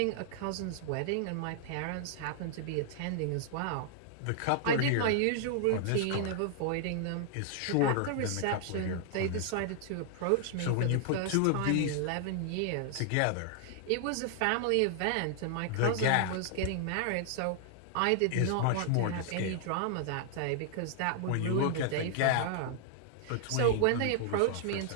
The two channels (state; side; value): different; both; correlation 0.00